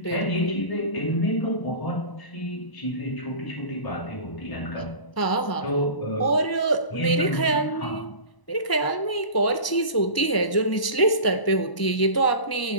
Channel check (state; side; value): late; right; 1.0 ms